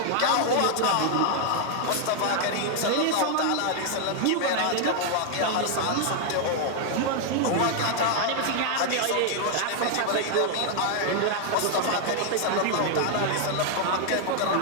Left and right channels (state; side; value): different; both; correlation 0.00